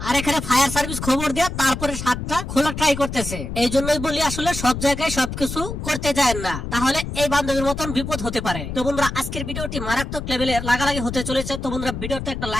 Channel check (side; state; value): left; noise; rumble, 6 dB below the sound